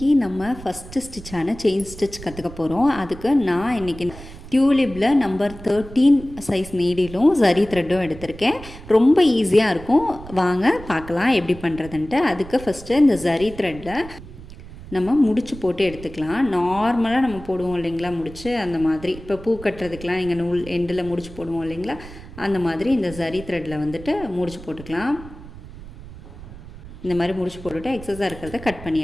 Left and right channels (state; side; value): noise; right; rumble, 15 dB below the sound